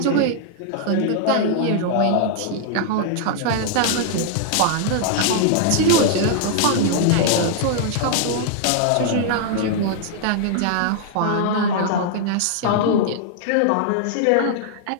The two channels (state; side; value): different; both; correlation -0.01